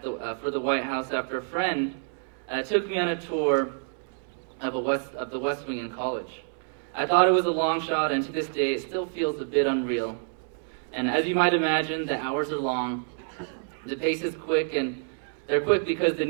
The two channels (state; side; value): silent; left; 60 dB below the other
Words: for the White House after a friend took me on a tour of the West Wing in college. I thought it was a long shot, and to this day it still feels a bit unreal. And as you might imagine, the hours are long, the pace is quick, and they're quick because the